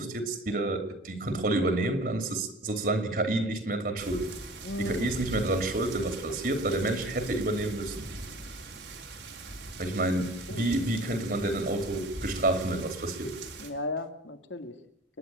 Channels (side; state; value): both; normal; correlation 0.43